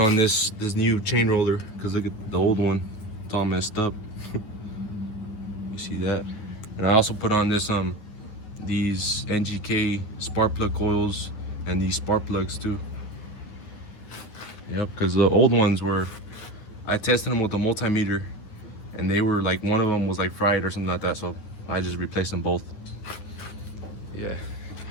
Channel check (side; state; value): right; late; 9.8 ms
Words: this new chain roller because look at the old one, it's all messed up. You see that? And I also put on this these NGK spark plug coils and these spark plugs too. Yep, because the old ones were, I tested them with a multimeter and they were like, one of them was like fried or something like that, so I just replaced them both. Yeah,